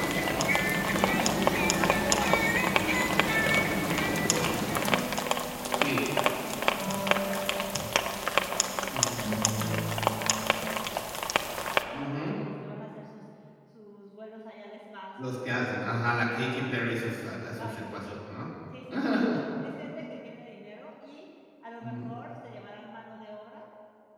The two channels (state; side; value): identical; both; correlation 1.00